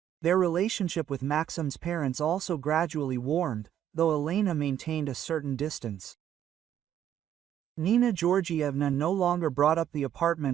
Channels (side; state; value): left; quieter; 10.5 dB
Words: Their relationship with Maxim's parents also gradually warmed, though Elena maintained a certain distance. Nina Georgievna no longer brought up the